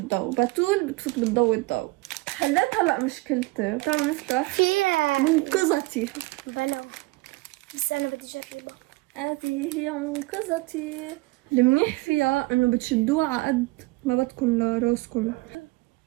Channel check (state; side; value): quieter; left; 22.7 dB